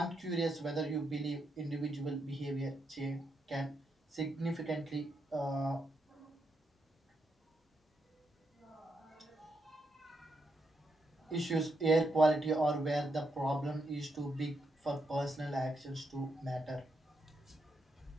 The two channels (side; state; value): both; normal; correlation 0.81